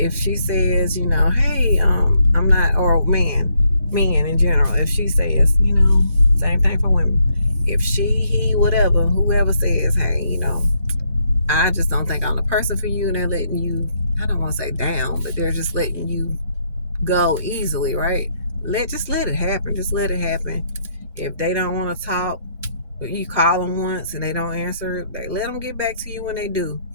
she says, hey, I'm not, or men in general, if she says, same thing for women. If she, he, whatever, whoever says, hey, I just don't think I'm the person for you, and they're letting you, I don't want to say down, but they're just letting you go easily, right? Just let it happen. Just let it happen. If they don't want to talk, you call them once and they don't answer, they let them get back to you when they do.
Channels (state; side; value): inverted; both; correlation -0.74